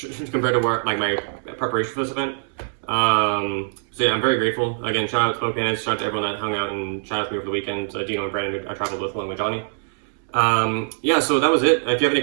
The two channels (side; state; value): left; silent; digital silence